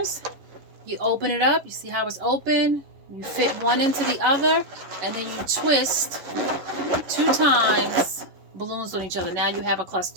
you open it up. You see how it's open? You fit one into the other, and then you twist 2 times balloons on each other. Now you have a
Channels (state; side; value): late; left; 11 ms